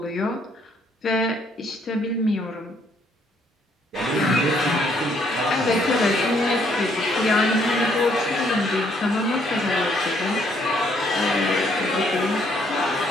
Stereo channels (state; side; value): normal; both; correlation 0.68